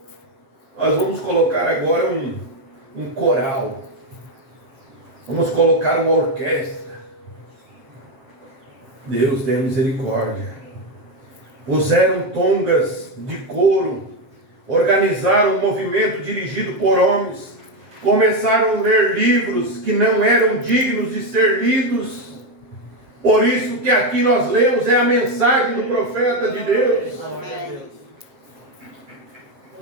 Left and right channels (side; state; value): left; late; 7.8 ms